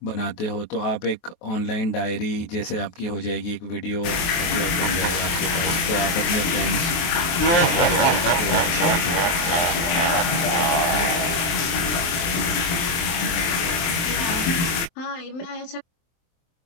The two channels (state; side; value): late; right; 23 ms